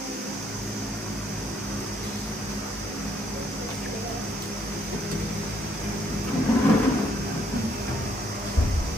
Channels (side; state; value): both; normal; correlation 0.69